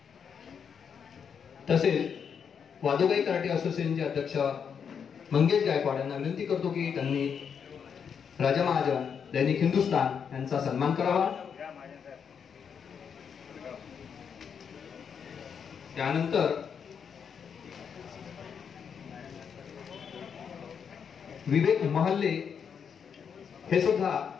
तसेच वादुगाई कराटे असोसिएशनचे अध्यक्ष मंगेश गायकवाड यांना विनंती करतो की त्यांनी राजा महाजन दैनिक हिंदुस्थान यांचा सन्मान करावा। त्यानंतर विवेक महल्ले हे सुद्धा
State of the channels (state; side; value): quieter; right; 7.1 dB